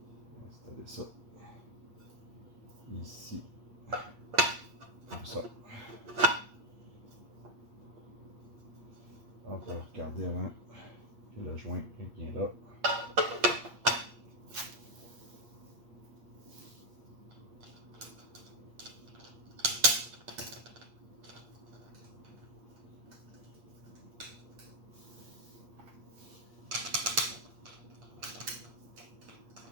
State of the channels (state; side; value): late; left; 8.5 ms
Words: installer ça ici, comme ça. On peut regarder avant que le joint est bien là.